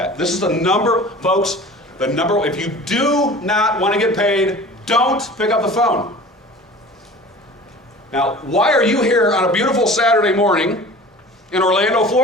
This is the number, folks, the number. If you do not want to get paid, don't pick up the phone. Now, why are you here on a beautiful Saturday morning in Orlando,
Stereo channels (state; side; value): normal; both; correlation 0.41